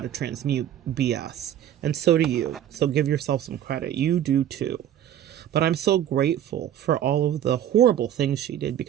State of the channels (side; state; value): left; quieter; 10.7 dB